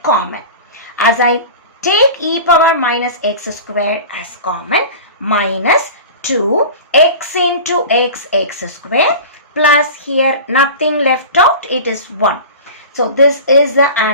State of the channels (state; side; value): inverted; both; correlation -0.34